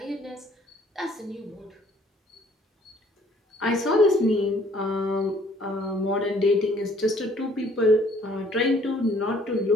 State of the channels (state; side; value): normal; both; correlation 0.60